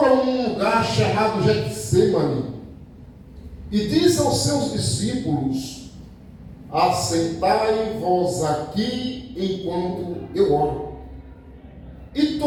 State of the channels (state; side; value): identical; both; correlation 1.00